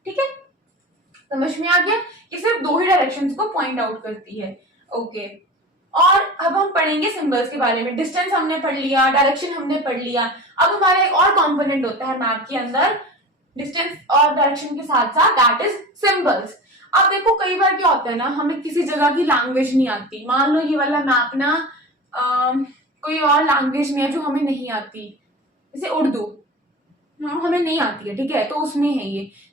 ठीक है। समझ में आ गया? ये सिर्फ दो ही डायरेक्शंस को पॉइंट आउट करती है, ओके। और अब हम पढ़ेंगे सिंबल्स के बारे में। डिस्टेंस हमने पढ़ लिया, डायरेक्शन हमने पढ़ लिया। अब हमारा एक और कंपोनेंट होता है मैप के अंदर, डिस्टेंस और डायरेक्शन के साथ साथ, दैट इज सिंबल्स। अब देखो कई बार क्या होता है ना, हमें किसी जगह की लैंग्वेज नहीं आती। मान लो ये वाला मैप ना कोई और लैंग्वेज में है जो हमें नहीं आती, जैसे उर्दू हमें नहीं आती है, ठीक है, तो उसमें है ये,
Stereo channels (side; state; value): both; normal; correlation 0.33